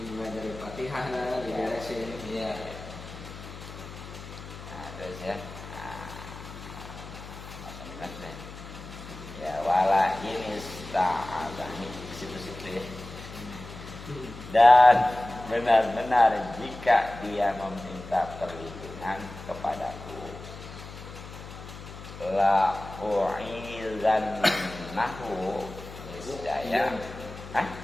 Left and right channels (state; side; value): noise; left; hum, 13 dB below the sound